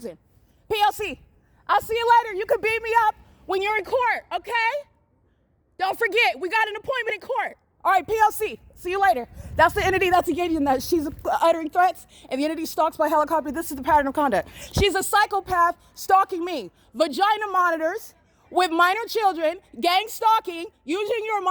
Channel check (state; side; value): identical; both; correlation 1.00